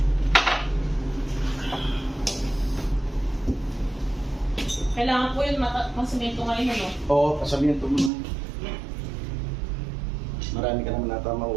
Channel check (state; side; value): drops out; left; at 8.1 s